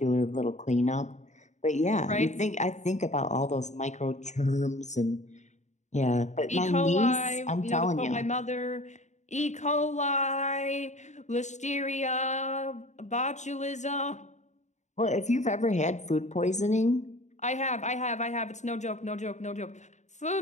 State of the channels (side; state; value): right; late; 0.34 ms